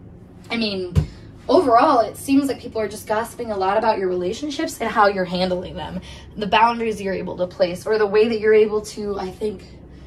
I mean, overall, it seems like people are just gossiping a lot about your relationships and how you're handling them, the boundaries you're able to place, or the way that you're able to, I think,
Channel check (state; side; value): identical; both; correlation 1.00